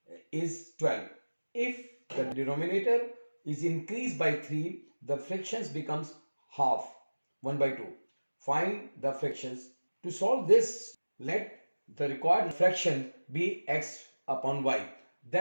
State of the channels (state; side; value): inverted; both; correlation -1.00